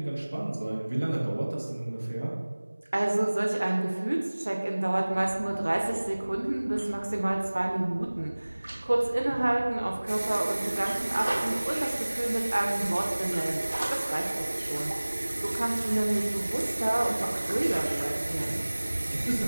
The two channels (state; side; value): inverted; both; correlation -1.00